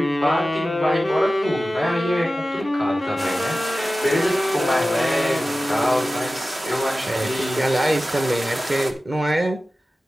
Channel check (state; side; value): normal; both; correlation 0.95